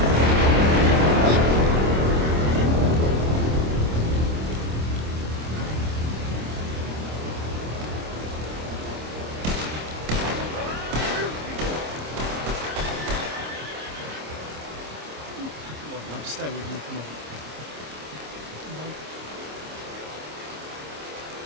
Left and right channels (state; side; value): late; left; 26 ms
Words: Come on, love, stay with me, come on.